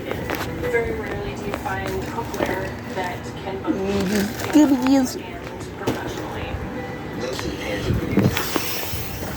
Very rarely do you find cookware that can both and professionally. Those are the pans of the universe.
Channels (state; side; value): identical; both; correlation 1.00